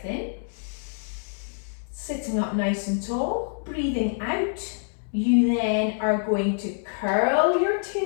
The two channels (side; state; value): right; silent; 61 dB below the other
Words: in, sitting up nice and tall, breathing out. You then are going to curl your